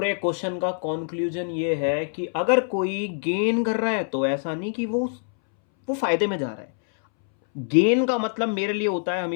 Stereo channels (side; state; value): right; silent; 62 dB below the other